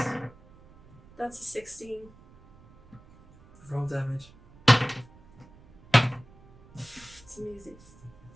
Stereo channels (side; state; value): right; noise; rumble, 24 dB below the sound